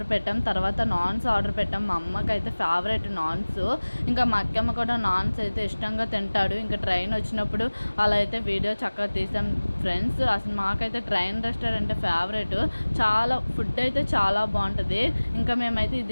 పెట్టాం, తర్వాత నాన్స్ ఆర్డర్ పెట్టాం. మా అమ్మకి అయితే ఫేవరెట్ నాన్స్. ఇంకా మా అక్కమ్మ కూడా నాన్స్ అయితే ఇష్టంగా తింటాడు. ఇంకా ట్రైన్ వచ్చినప్పుడు అలా అయితే వీడియో చక్కగా తీసాం ఫ్రెండ్స్. అసలు మాకైతే ట్రైన్ రెస్టారెంట్ ఫేవరెట్. చాలా ఫుడ్ అయితే చాలా బాగుంటుంది. ఇంకా మేమైతే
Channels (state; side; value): inverted; both; correlation -1.00